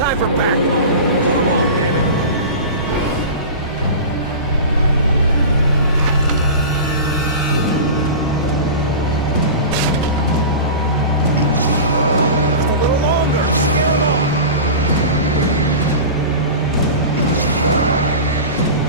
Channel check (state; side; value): inverted; both; correlation -0.30